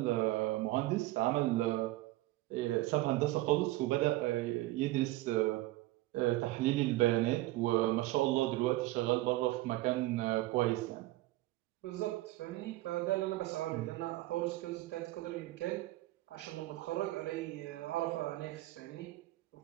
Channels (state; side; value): quieter; left; 18.0 dB